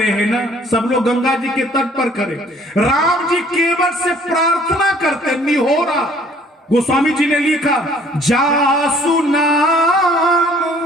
हैं ना, सब लोग गंगा जी के तट पर खड़े। राम जी केवट से प्रार्थना करते निहोरा। गोस्वामी जी ने लिखा जासु नाम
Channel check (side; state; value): both; normal; correlation 0.57